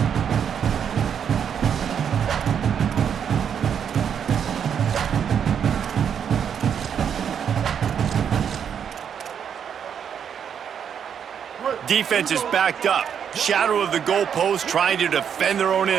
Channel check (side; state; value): left; quieter; 8.0 dB